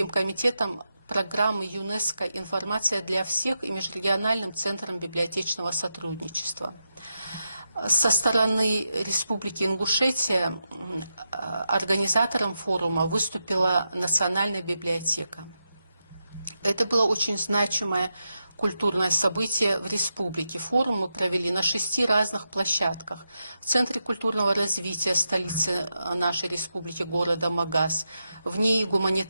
комитетом программы ЮНЕСКО «Информация для всех» и Межрегиональным центром библиотечного сотрудничества. Со стороны Республики Ингушетия организатором форума выступила Национальная библиотека. Это было очень значимое культурное событие в республике. Форум мы провели на 6 разных площадках. В Центре культурного развития столицы нашей республики, города Магас, в НИИ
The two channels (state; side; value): inverted; both; correlation -0.87